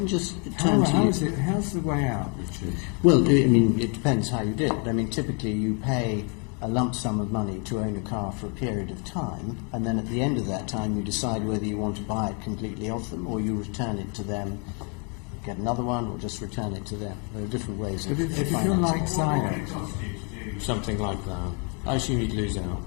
just turn to you. how's the way out, Richard? Well, I mean, it depends how you did it. I mean, typically you pay a lump sum of money to own a car for a period of time, and then at the end of that time you decide whether you want to buy it completely off them or you return it to them, get another one, or just return it to them. There are different ways of If you feel financing. like Syed, Something like that. I assume you'd lose out.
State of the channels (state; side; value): quieter; right; 34.8 dB